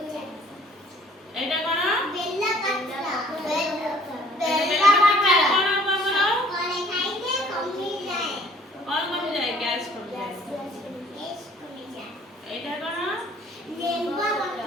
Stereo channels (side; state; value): both; normal; correlation 0.56